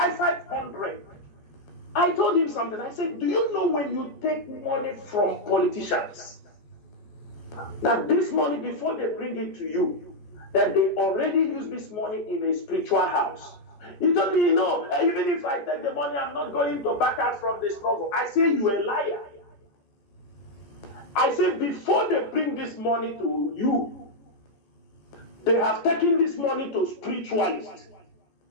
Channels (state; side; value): late; right; 14 ms